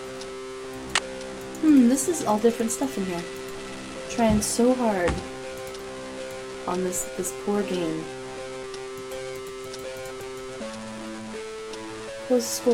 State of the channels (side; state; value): both; identical; correlation 1.00